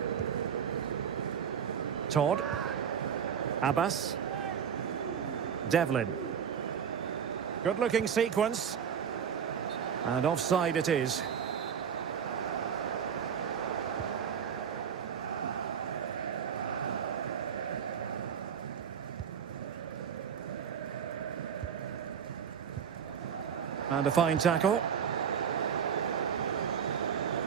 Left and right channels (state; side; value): quieter; left; 7.7 dB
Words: Todd. Abbas. Devlin. Good-looking sequence. And offside it is. And a fine tackle.